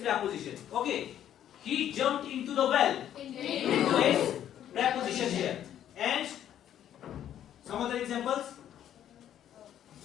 Okay. He jumped into the well. Into is preposition here. And some other examples.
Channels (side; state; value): right; quieter; 10.7 dB